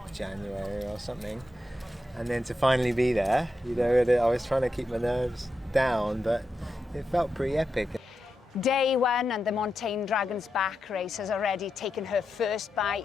January or something, and then to finally be there, you know, I was trying to keep my nerves down, but it felt pretty epic. Day one and the Montane Dragon's Back race has already taken her first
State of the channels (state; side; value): normal; both; correlation 0.87